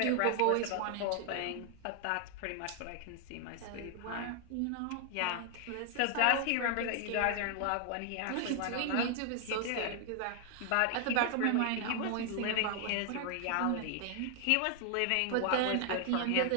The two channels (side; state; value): both; different; correlation 0.00